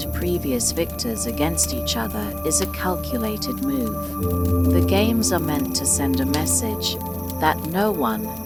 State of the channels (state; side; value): noise; left; hum, 25 dB below the sound